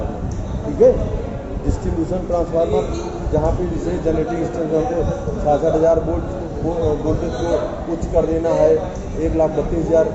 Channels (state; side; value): identical; both; correlation 1.00